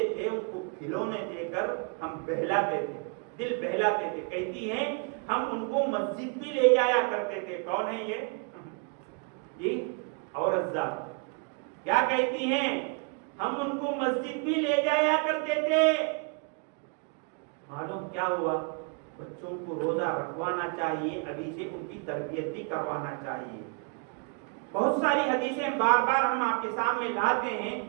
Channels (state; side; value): quieter; left; 37.3 dB